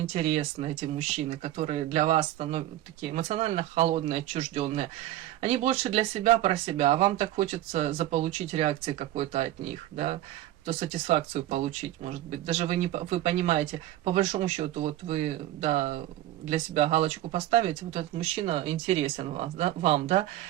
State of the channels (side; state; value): left; quieter; 14.2 dB